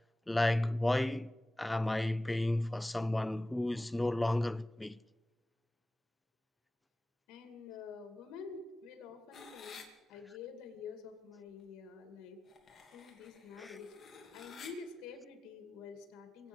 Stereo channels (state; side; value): normal; both; correlation 0.97